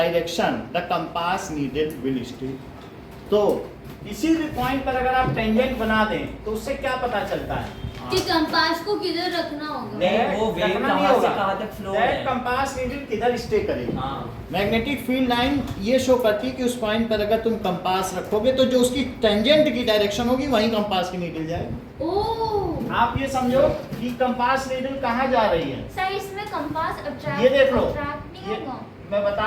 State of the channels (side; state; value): both; identical; correlation 1.00